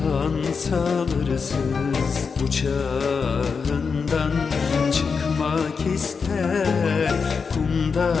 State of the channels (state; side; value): quieter; right; 5.4 dB